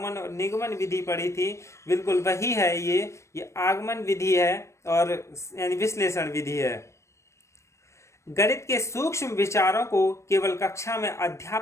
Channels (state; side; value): late; right; 0.14 ms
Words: और निगमन विधि पढ़ी थी, बिल्कुल वही है। ये आगमन विधि है और यानी विश्लेषण विधि है। गणित के सूक्ष्म विचारों को केवल कक्षा में